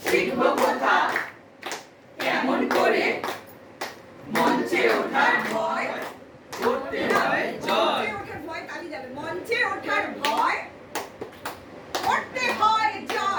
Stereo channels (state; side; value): identical; both; correlation 1.00